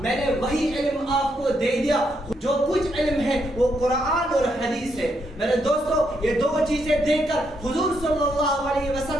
نے وہی علم آپ کو دے دیا. جو کچھ علم ہے وہ قرآن اور حدیث ہے. میرے دوستو، یہ دو چیزیں دے کر حضور صلی اللہ علیہ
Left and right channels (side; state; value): both; normal; correlation 0.77